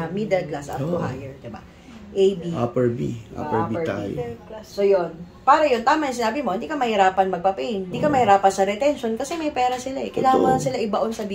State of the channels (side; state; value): both; identical; correlation 1.00